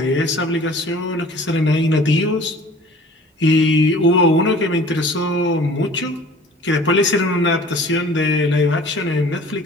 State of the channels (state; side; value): normal; both; correlation 0.47